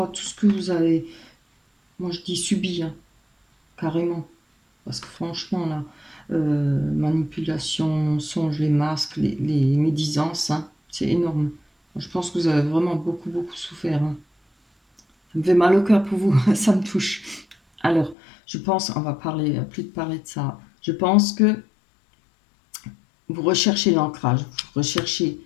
à tout ce que vous avez, moi je dis subi, hein, carrément. Parce que franchement là, manipulation, mensonges, les masques, les médisances, hein, c'est énorme. Je pense que vous avez vraiment beaucoup souffert, hein. Ça me fait mal au cœur pour vous, ça me touche. Alors, je pense, on va plus de parler de ça. Je pense que vous recherchez l'ancrage, vous recherchez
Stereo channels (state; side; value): drops out; right; at 18.2 s